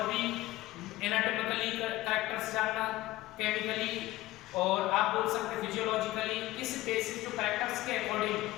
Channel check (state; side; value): quieter; right; 17.5 dB